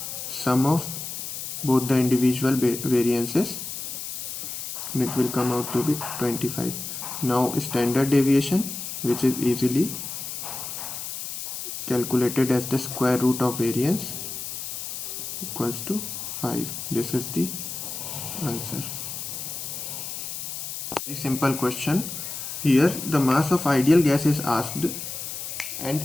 sum of both the individual variances, and it will come out to be 25. Now standard deviation, which is easily calculated as the square root of variance, equals to 5. This is the answer. Very simple question. Here the mass of ideal gas is asked,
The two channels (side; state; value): left; noise; hiss, 6 dB below the sound